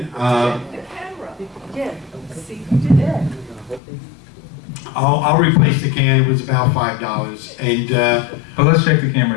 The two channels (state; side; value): drops out; right; at 3.8 s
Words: I'll replace the can. It was about $5, and But let's check the